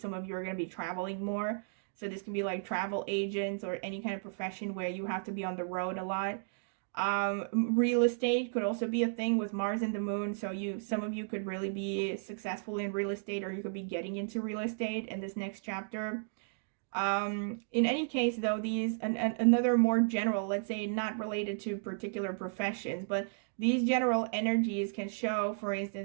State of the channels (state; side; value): silent; left; digital silence